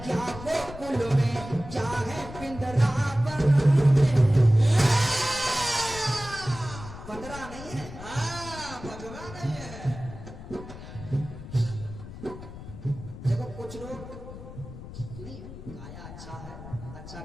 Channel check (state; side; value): noise; left; rumble, 13 dB below the sound